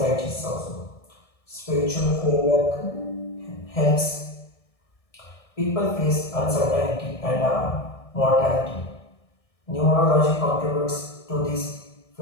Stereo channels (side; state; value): right; late; 1.6 ms